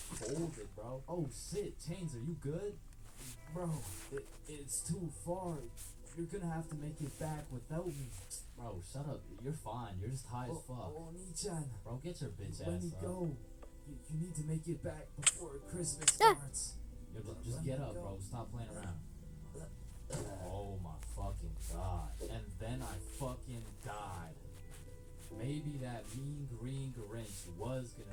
folded, bro. Oh shit, Chains, are you good? Bro, it's too far. You're gonna have to make it back without me. Bro, shut up. You're fine. You're just high as fuck. Oh, Nichan. Bro, get your bitch ass up. Let me go. You need to make it back before Christmas starts. Yo, just get up, bro. Stop playing around. Oh my fucking god. And then I fucking died. Maybe that mean green Grinch was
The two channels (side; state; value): both; identical; correlation 1.00